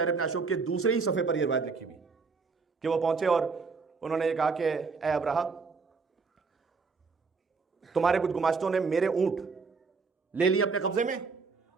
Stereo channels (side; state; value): left; quieter; 4.7 dB